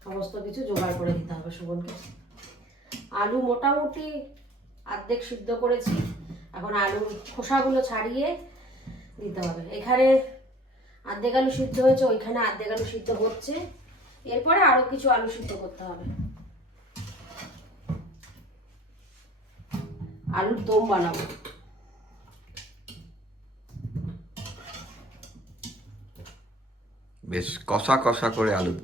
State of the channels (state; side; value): normal; both; correlation 0.49